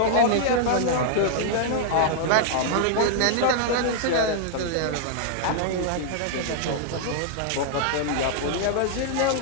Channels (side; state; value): both; different; correlation -0.01